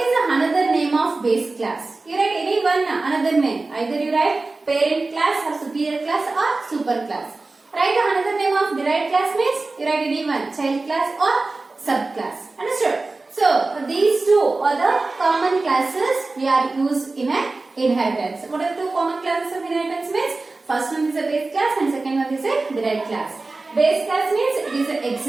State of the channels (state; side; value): quieter; left; 3.4 dB